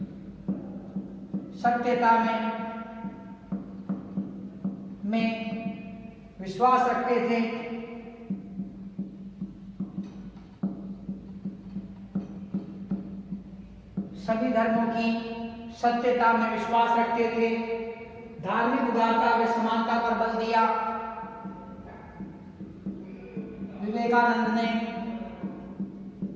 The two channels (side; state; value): both; identical; correlation 1.00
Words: सत्यता में विश्वास रखते थे। सभी धर्मों की सत्यता में विश्वास रखते थे। धार्मिक उदारता व समानता पर बल दिया। विवेकानंद ने